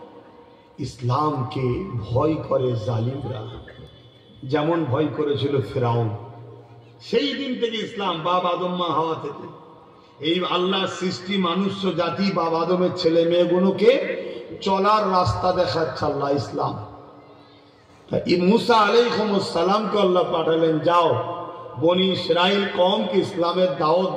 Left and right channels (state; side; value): identical; both; correlation 1.00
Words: ইসলামকে ভয় করে জালিমরা, যেমন ভয় করেছিল ফিরাউন। সেই দিন থেকে ইসলাম, বাপ আদম মা হাওয়া থেকে, এই আল্লাহ সৃষ্টি মানুষ জাতি বাপ আদমের ছেলে মেয়েগুলোকে চলার রাস্তা দেখাচ্ছে আল্লাহ ইসলাম। মুসা আলাইহিস সালামকে আল্লাহ পাঠালেন, যাও বনি ইসরাইল কওমকে ইসলামের দাওয়াত